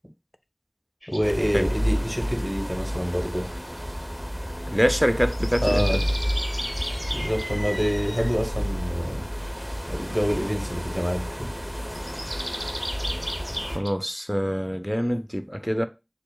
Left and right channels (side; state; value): both; identical; correlation 1.00